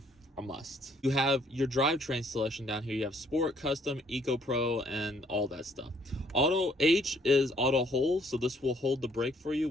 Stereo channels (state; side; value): normal; both; correlation 0.65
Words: a must. You have your drivetrain selection down here. You have Sport, Custom, Eco Pro, and all that stuff. Auto H is auto hold, so this will hold the brake for you